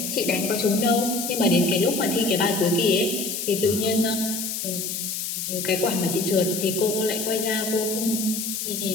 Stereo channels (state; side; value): noise; left; hiss, 4 dB below the sound